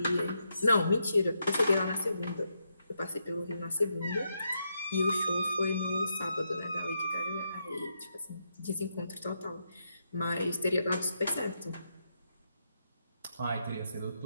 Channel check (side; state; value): both; inverted; correlation -0.82